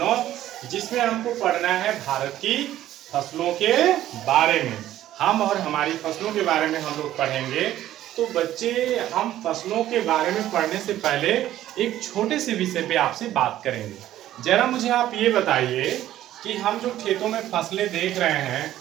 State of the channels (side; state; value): left; quieter; 13.2 dB